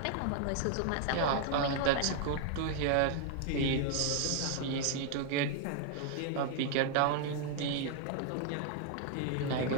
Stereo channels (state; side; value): different; both; correlation 0.00